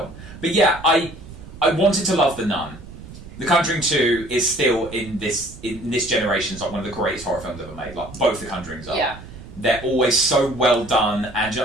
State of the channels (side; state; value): right; noise; rumble, 16 dB below the sound